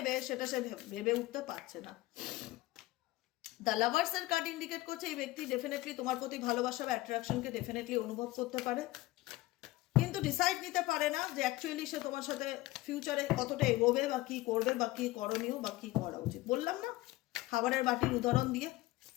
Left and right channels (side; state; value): right; quieter; 18.4 dB